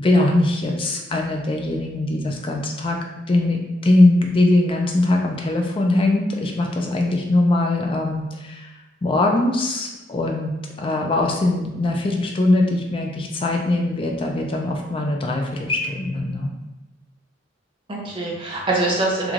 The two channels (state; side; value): normal; both; correlation 0.78